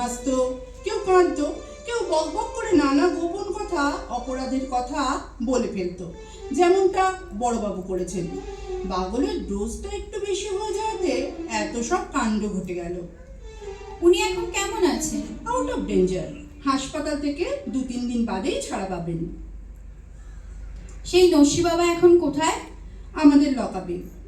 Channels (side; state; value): both; identical; correlation 1.00